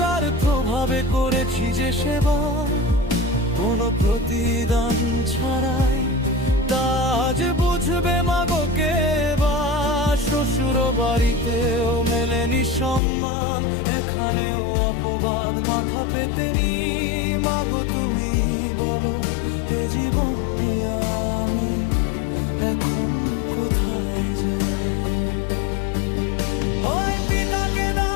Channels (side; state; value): right; drops out; at 13.0 s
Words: করেছি যে সেবা, কোনো প্রতিদান ছাড়াই, তা আজ বুঝবে মাগোকে বা। শ্বশুর বাড়িতেও মেলেনি সম্মান, এখানেও অপবাদ মাথা পেতে নি। মাগো তুমি বলো, এ জীবন নিয়ে আমি এখন কোথায় যাই? হয় পিতাকে